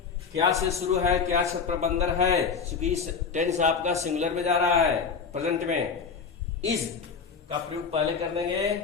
क्या से शुरू है, क्या छत पर बंदर है, क्योंकि टेंस आपका सिंगुलर में जा रहा है, प्रेजेंट में। इज का प्रयोग पहले कर देंगे,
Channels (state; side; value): quieter; right; 5.7 dB